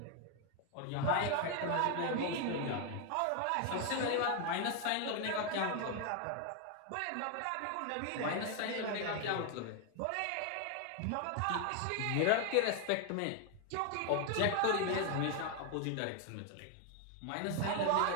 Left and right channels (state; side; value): different; both; correlation 0.01